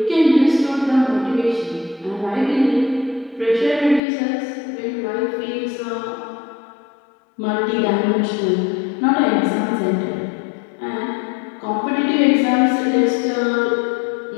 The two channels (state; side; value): drops out; right; at 4.0 s